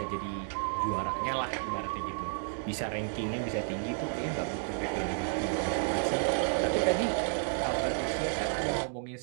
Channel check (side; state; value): left; silent; 57 dB below the other